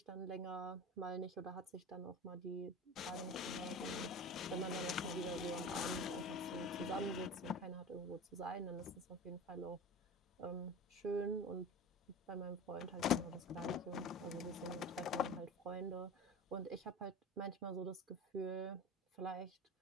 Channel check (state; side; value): normal; both; correlation 0.32